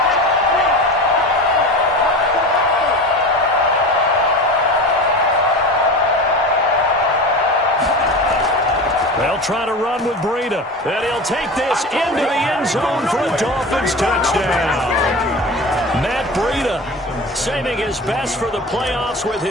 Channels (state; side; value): normal; both; correlation 0.30